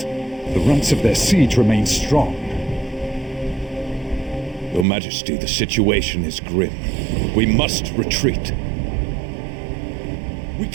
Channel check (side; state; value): left; drops out; at 4.9 s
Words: The ranks of their siege remain strong. Your Majesty, the situation is grim. We must retreat. We